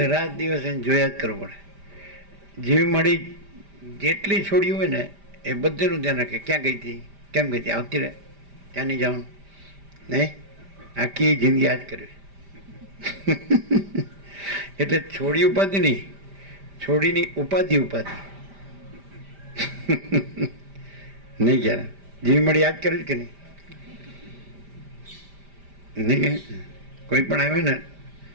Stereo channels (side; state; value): left; late; 5.0 ms